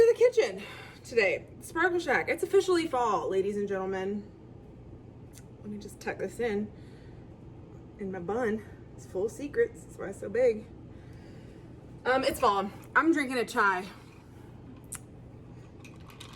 the kitchen today. Sparkle Shack. It's officially fall, ladies and gentlemen. Let me just tuck this in my bun. It's full of secrets. That's why it's so big. It's fall. I'm drinking a chai.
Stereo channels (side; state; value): both; identical; correlation 1.00